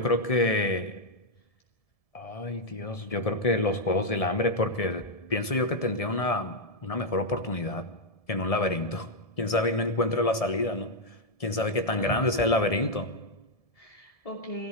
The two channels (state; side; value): late; right; 1.7 ms